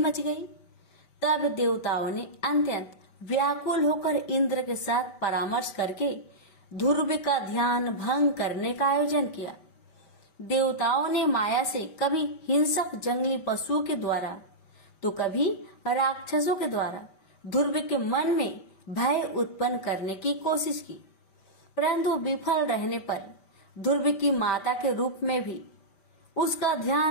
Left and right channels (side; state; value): right; late; 5.1 ms